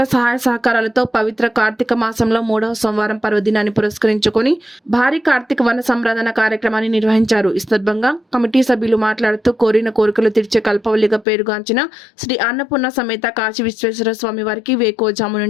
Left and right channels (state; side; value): drops out; right; at 11.2 s